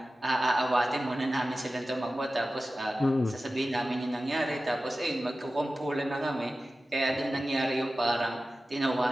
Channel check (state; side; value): normal; both; correlation 0.95